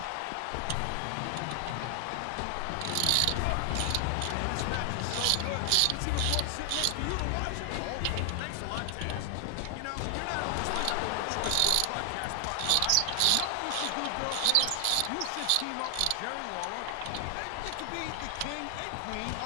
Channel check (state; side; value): different; both; correlation 0.00